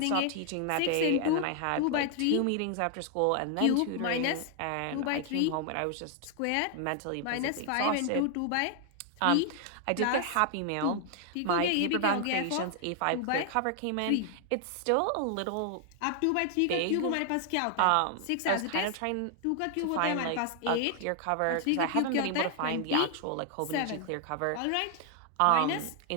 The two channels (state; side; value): different; both; correlation 0.00